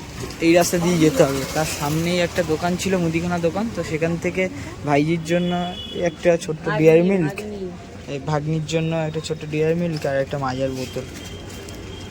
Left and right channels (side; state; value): both; identical; correlation 1.00